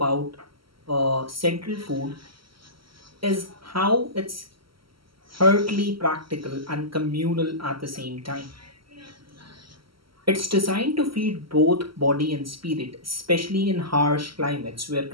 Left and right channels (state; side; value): late; left; 0.74 ms